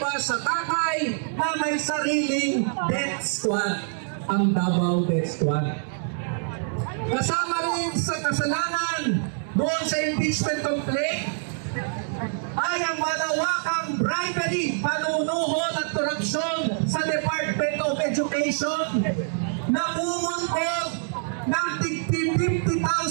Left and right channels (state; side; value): silent; left; digital silence